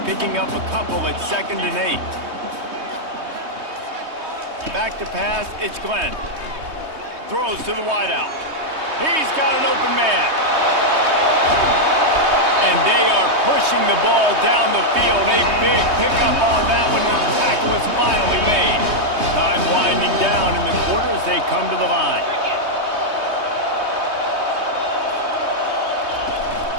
up a couple at 2nd and 8. Back to pass, it's Glenn. Throws to the wideout. He's got an open man. And they are pushing the ball down the field. A big pickup on that one as the tackle is finally made. Time winding down in the quarter as they come to the line.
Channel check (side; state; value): left; late; 3.2 ms